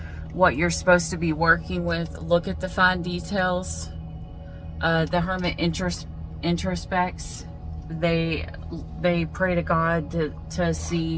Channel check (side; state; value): both; identical; correlation 1.00